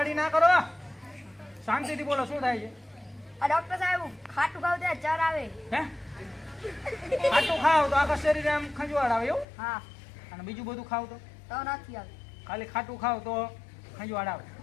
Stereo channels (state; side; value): drops out; right; at 9.5 s